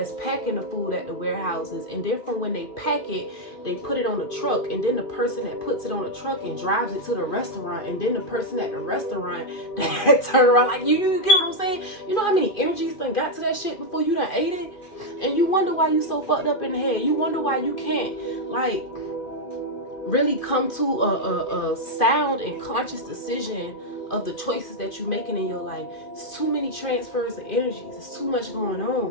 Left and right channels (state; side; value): late; right; 2.5 ms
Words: packing the food at the warehouses, and then from when they pack it, they put it on the truck, and then the person that puts it on the truck and drives it to the restaurant, and then the person at the restaurant that turn around like, you get what I'm saying? You know how many energies done got to that shit before you done ate it? And you wonder why you so fucked up in the head. You wonder why you can't, like, really come to a sound and conscious decision of the choices that you're making in your life. It's too many transfers of energies. It's too much going